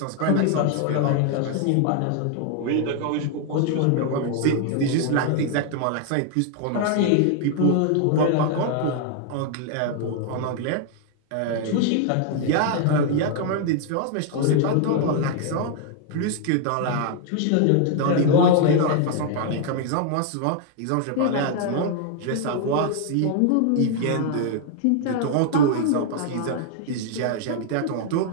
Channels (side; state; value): both; different; correlation 0.00